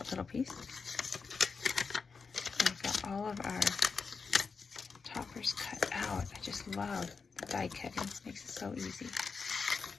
little piece. We've got all of our toppers cut out. I just love the die cutting. It makes it so easy.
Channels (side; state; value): right; quieter; 5.1 dB